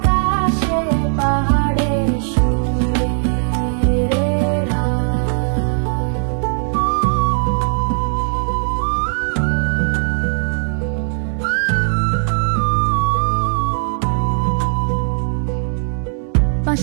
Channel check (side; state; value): left; silent; 67 dB below the other